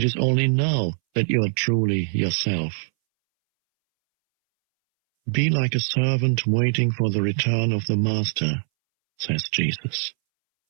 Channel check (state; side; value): silent; left; 64 dB below the other